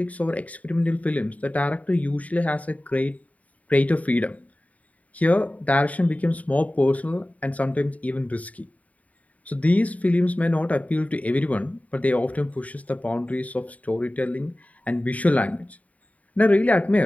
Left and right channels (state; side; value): late; right; 0.070 ms